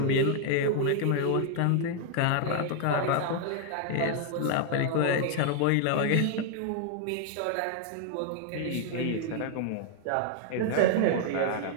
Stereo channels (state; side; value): different; both; correlation 0.00